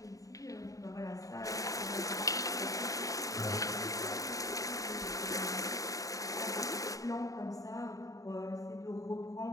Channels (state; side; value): late; right; 0.16 ms